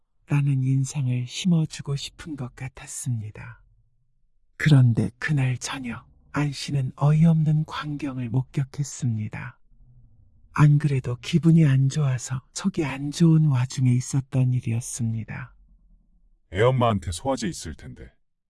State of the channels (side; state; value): both; identical; correlation 1.00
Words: 라는 인상을 심어주고 싶은 것 같았습니다. 그런데 그날 저녁 안 씨는 어이없는 광경을 목격했습니다. 안 그래도 기분이 안 좋아서 속이 안 좋은 와중에 있었던 일이었습니다. 애엄마한테 소화제 있을 텐데.